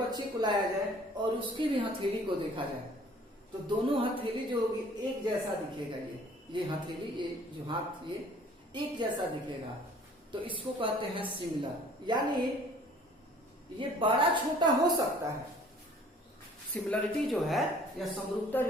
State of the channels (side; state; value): both; normal; correlation 0.53